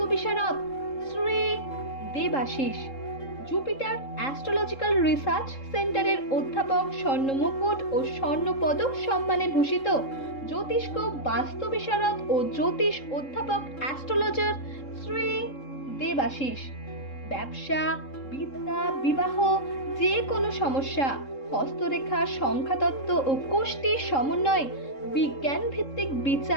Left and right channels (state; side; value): late; right; 3.7 ms